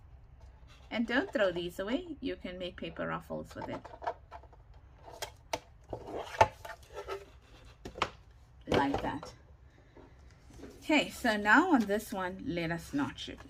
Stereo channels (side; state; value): both; identical; correlation 1.00